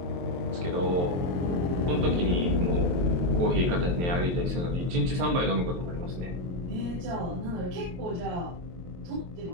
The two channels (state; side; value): late; left; 23 ms